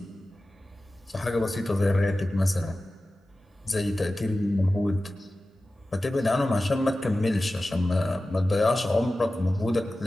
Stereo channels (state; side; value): normal; both; correlation 0.95